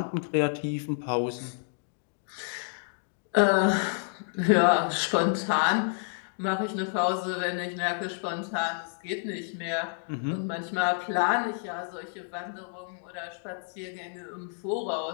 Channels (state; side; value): silent; right; digital silence